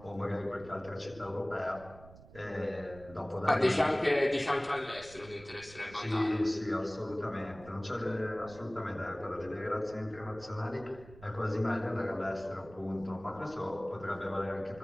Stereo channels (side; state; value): right; noise; rumble, 19 dB below the sound